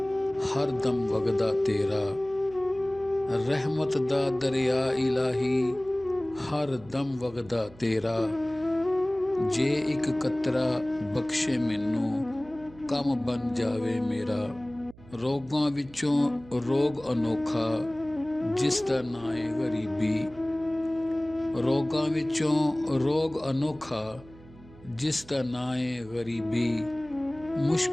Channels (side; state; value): right; noise; hum, 22 dB below the sound